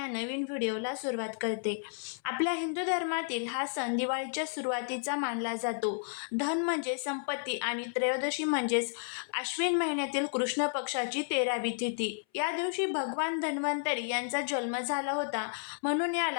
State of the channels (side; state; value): right; silent; 56 dB below the other